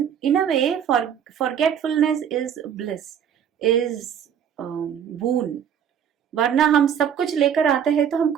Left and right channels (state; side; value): quieter; left; 8.6 dB